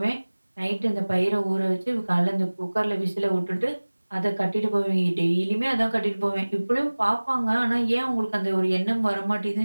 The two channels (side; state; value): both; inverted; correlation -1.00